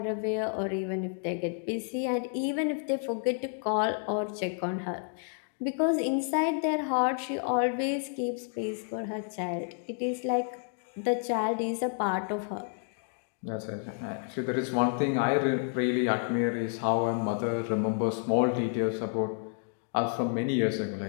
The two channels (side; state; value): right; silent; 58 dB below the other